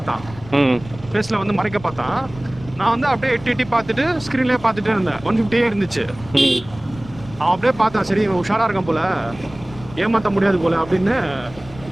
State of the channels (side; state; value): left; noise; rumble, 18 dB below the sound